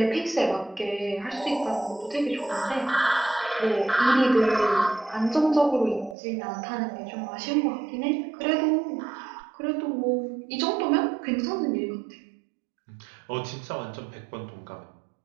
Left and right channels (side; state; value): left; drops out; at 6.2 s